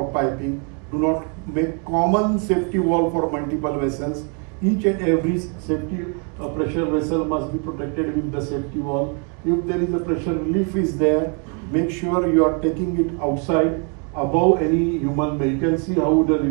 piping. Do not make common safety valve for multiple vessels. Each and every safety pressure vessel must be protected with the safety valve. If there is a pressure relief is there, make sure you are taking it outside above any human being. You can see how the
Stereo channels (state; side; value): quieter; left; 36.7 dB